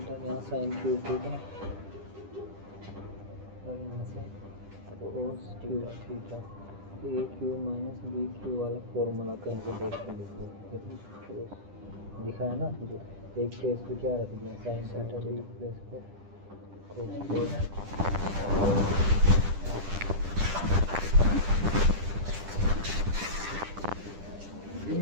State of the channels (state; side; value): late; left; 10 ms